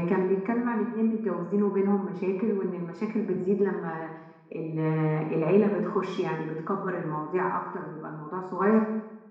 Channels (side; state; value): both; identical; correlation 1.00